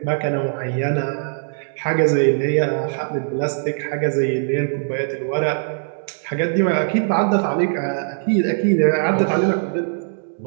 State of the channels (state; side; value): silent; left; digital silence